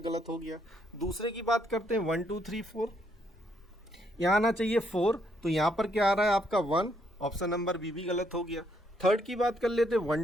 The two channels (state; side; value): normal; both; correlation 0.73